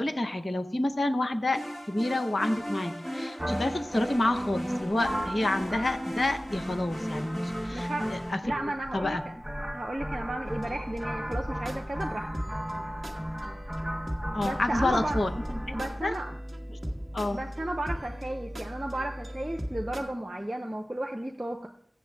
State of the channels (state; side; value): normal; both; correlation 0.96